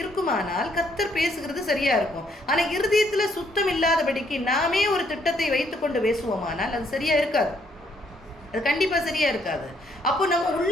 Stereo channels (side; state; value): both; normal; correlation 0.70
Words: இருக்குமானால் கர்த்தர் பேசுகிறது சரியாக இருக்கும். ஆனால் இருதயத்தில் சுத்தம் இல்லாதபடிக்கு நாமே ஒரு திட்டத்தை வைத்து கொண்டு பேசுவோமானால் அது சரியாக இருக்காது. அது கண்டிப்பாக சரியாக இருக்காது. அப்போ நம்ம